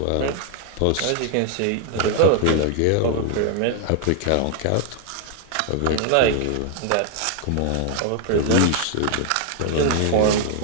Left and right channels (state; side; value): different; both; correlation 0.00